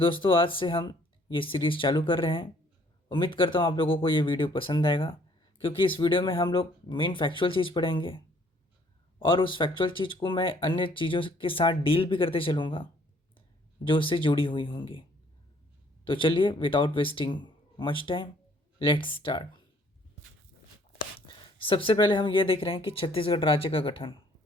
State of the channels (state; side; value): normal; both; correlation 0.61